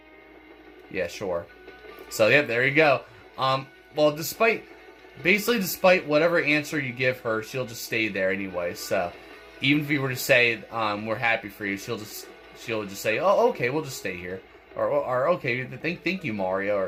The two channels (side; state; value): both; identical; correlation 1.00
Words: Yeah, sure. So, yep, there you go. Well, despite whatever answer you give her, she'll just stay there anyway. So, even if you were to say, we're happy for you, she'll just say, oh, okay, we'll just stay here. Or okay, thank you, Mario,